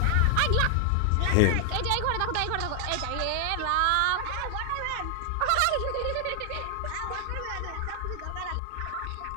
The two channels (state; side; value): different; both; correlation 0.00